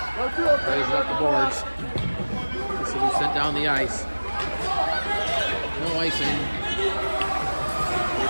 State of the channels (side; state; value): both; inverted; correlation -1.00